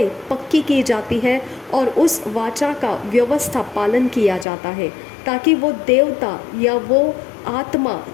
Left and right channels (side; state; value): right; drops out; at 4.5 s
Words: पक्की की जाती है और उस वाचा का व्यवस्था पालन किया जाता है ताकि वो देवता या वो आत्मा